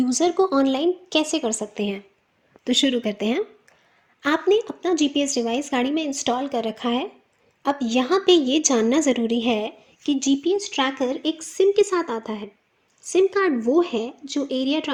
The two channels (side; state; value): both; identical; correlation 1.00